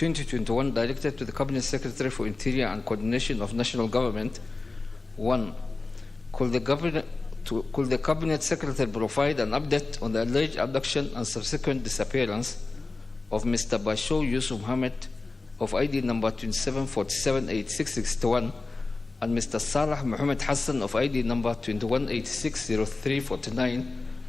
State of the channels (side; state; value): right; quieter; 3.5 dB